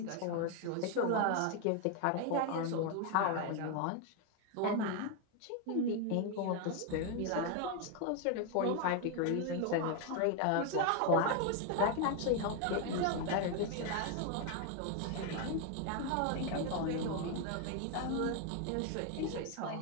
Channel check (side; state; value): both; different; correlation 0.01